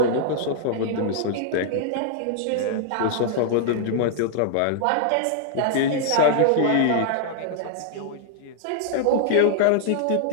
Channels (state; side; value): different; both; correlation -0.01